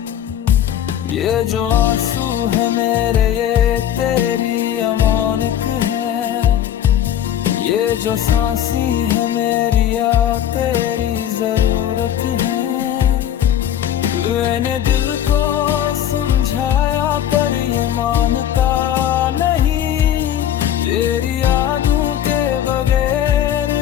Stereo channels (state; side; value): quieter; right; 10.6 dB